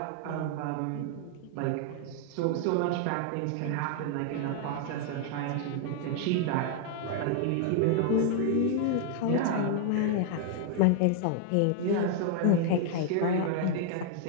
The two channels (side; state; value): both; different; correlation 0.00